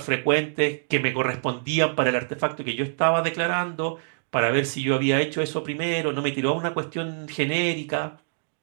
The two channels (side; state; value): left; silent; digital silence